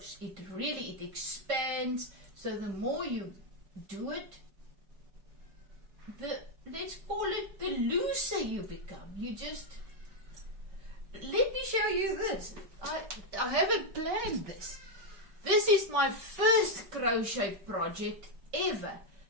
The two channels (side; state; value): left; late; 5.1 ms